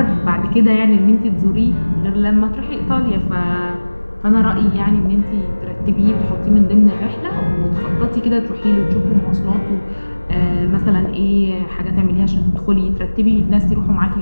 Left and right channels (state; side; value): inverted; both; correlation -1.00